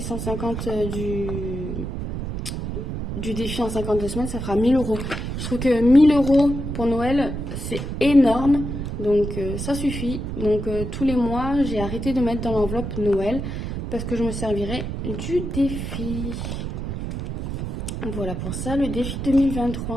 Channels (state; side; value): noise; right; rumble, 5 dB below the sound